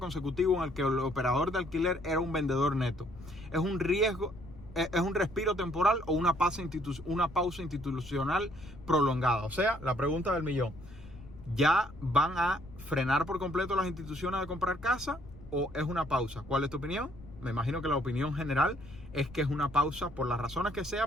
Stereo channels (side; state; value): left; noise; rumble, 17 dB below the sound